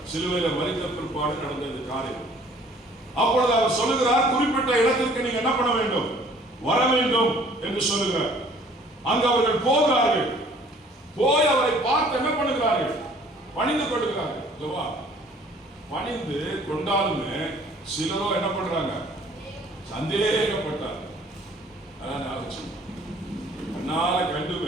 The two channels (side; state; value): both; normal; correlation 0.55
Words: சிலுவையில மரித்த பிற்பாடு நடந்த காரியம். அப்பொழுது அவர் சொல்லுகிறார், குறிப்பிட்ட இடத்திற்கு நீங்க என்ன பண்ண வேண்டும், வர வேண்டும் என்று சொல்லுகிறார். அங்கு அவர்கள் போகிறார்கள். போய் அவரை பார்த்து என்ன பண்ணுகிறார்கள், பணிந்து கொள்கிறார்கள். பணிந்து கொண்டாலுமே சிலரோ என்ன பண்றாங்க, சந்தேகப்பட்டார். அதனால